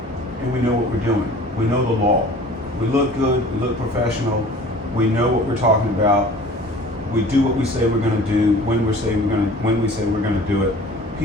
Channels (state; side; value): normal; both; correlation 0.46